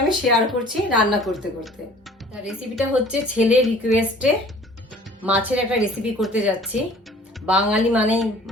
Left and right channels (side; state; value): both; normal; correlation 0.50